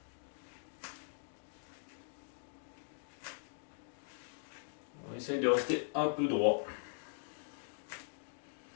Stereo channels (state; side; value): silent; right; digital silence